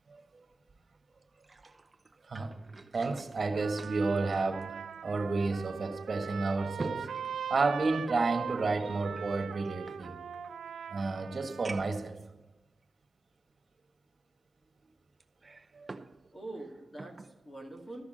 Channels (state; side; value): quieter; left; 3.5 dB